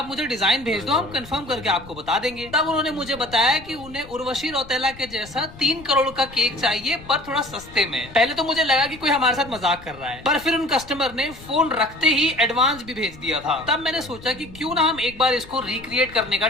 मुझे डिजाइन भेज दो, हम कंफर्म करके आपको बता देंगे। तब उन्होंने मुझे बताया कि उन्हें उर्वशी रौतेला के जैसा 3 करोड़ का केक चाहिए, पर थोड़ा सस्ते में। पहले तो मुझे लगा कि कोई हमारे साथ मजाक कर रहा है, पर फिर उन कस्टमर ने फोन रखते ही एडवांस भी भेज दिया था। तब मैंने सोचा कि क्यों ना हम एक बार इसको रिक्रिएट करने का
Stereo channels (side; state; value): left; noise; rumble, 19 dB below the sound